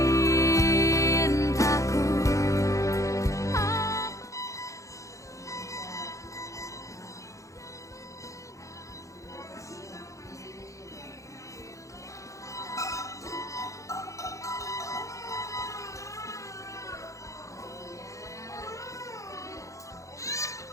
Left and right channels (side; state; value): right; late; 0.15 ms